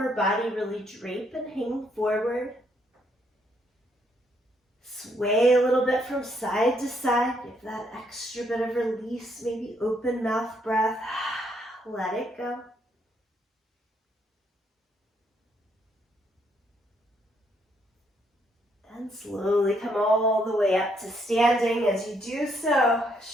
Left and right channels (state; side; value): normal; both; correlation 0.72